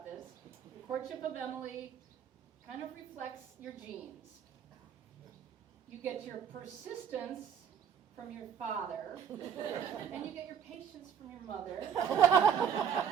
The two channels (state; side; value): quieter; left; 8.2 dB